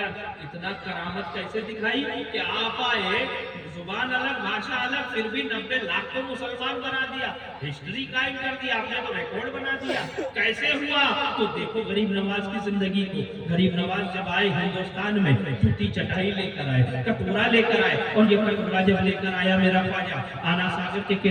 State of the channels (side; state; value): both; identical; correlation 1.00